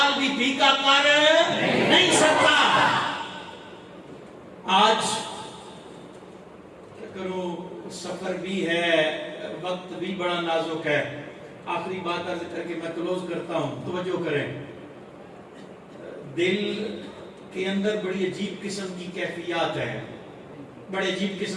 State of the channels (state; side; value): identical; both; correlation 1.00